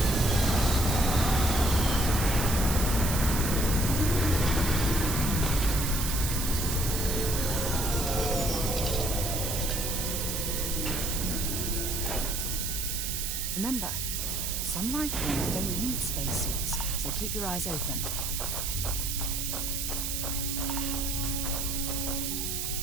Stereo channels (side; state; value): right; noise; hiss, 2 dB below the sound